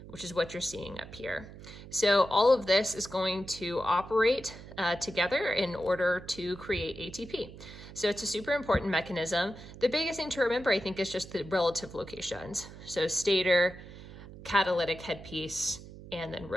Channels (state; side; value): noise; right; hum, 15 dB below the sound